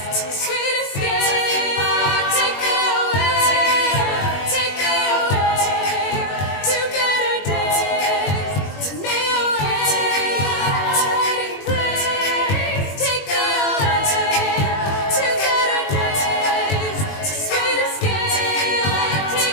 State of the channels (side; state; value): right; late; 21 ms